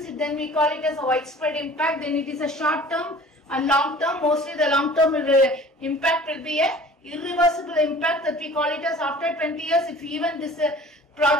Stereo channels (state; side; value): normal; both; correlation 0.46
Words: then we call it as a widespread impact. Then it is a short term and long term. Mostly the long term impact will be a irreversible impact that we call it as after 20 years. If even this